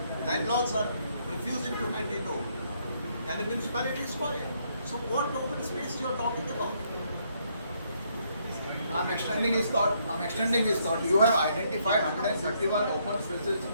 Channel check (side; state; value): both; inverted; correlation -0.71